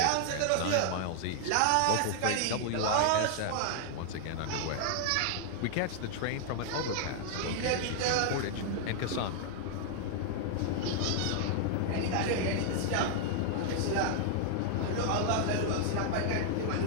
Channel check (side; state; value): both; different; correlation 0.00